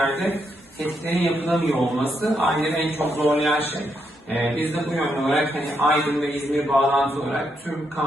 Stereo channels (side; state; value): both; normal; correlation 0.79